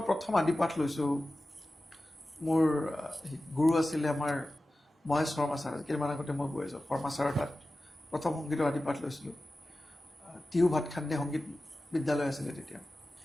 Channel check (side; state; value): both; normal; correlation 0.95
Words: প্ৰথম আদিপাঠ লৈছোঁ মোৰ গুৰু আছিলে আমাৰ মহেশ শৰ্মা ছাৰ কেইদিনমান আগতে মই গৈ আছোঁ শৰ্মা ছাৰৰ তাত প্ৰথম সংগীতৰ আদিপাঠ লৈছিলোঁ টিহু ভাতখান্দে সংগীত বিদ্যালয় আছিলে তেতিয়া